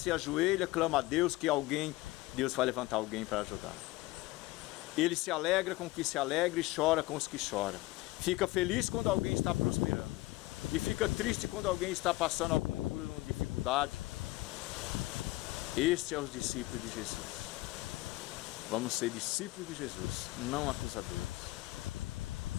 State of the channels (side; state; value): right; quieter; 19.5 dB